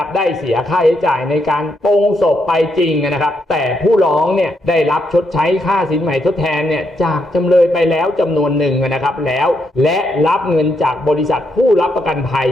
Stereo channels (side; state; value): both; normal; correlation 0.78